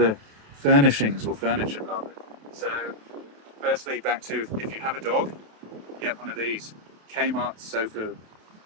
furnishings or furniture rather. So, firstly, back to if you have a dog, get one of these Kmart sofa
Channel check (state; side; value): late; left; 28 ms